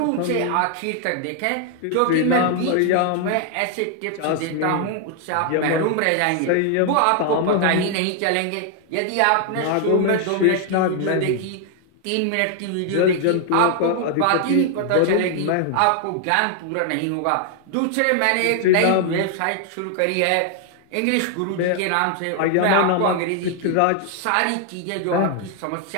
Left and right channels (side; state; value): both; different; correlation 0.00